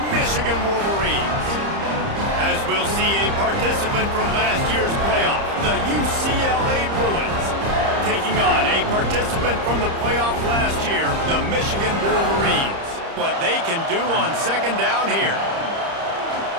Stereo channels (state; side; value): late; left; 30 ms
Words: Michigan Wolverines. As we'll see a participant from last year's playoff, the UCLA Bruins, taking on a participant from the playoff last year, the Michigan Wolverines. What they can do on second down here.